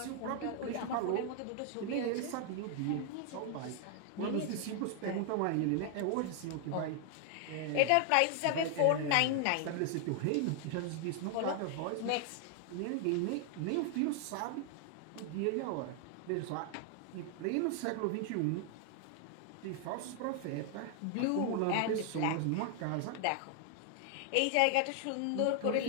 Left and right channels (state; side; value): different; both; correlation 0.00